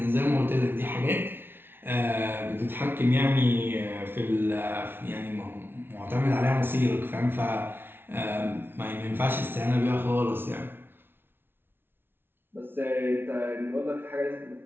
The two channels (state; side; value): late; left; 0.11 ms